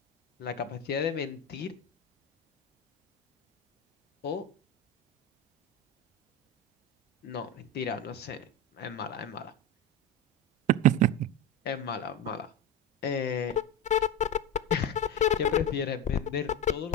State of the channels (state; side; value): normal; both; correlation 0.20